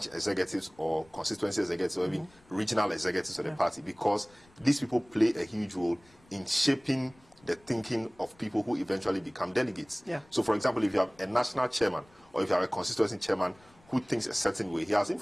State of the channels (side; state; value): left; noise; rumble, 29 dB below the sound